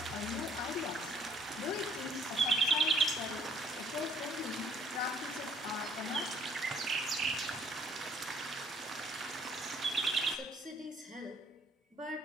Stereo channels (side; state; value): both; normal; correlation 0.61